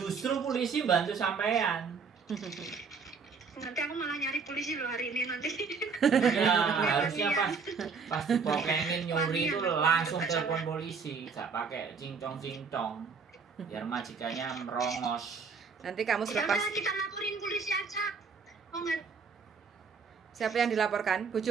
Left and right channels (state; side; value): quieter; left; 5.3 dB